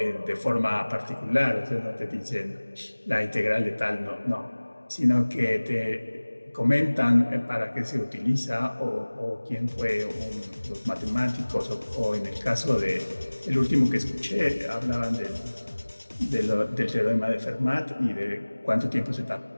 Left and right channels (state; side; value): inverted; both; correlation -1.00